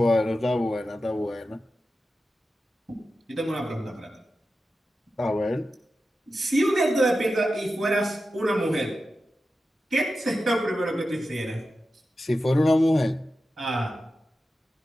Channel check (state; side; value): normal; both; correlation 0.92